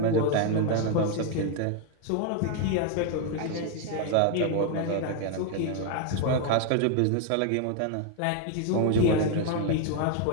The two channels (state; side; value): different; both; correlation 0.01